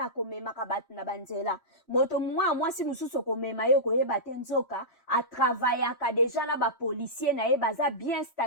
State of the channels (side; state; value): right; late; 3.1 ms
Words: komemaka bato na banzela moto mwasi mosusu komema yo koyeba te nzoka atravaillaka déjà na ba policier na ye baza bien